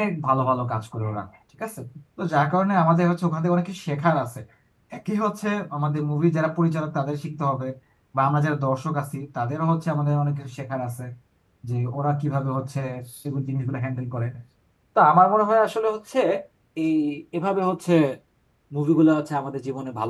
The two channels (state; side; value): identical; both; correlation 1.00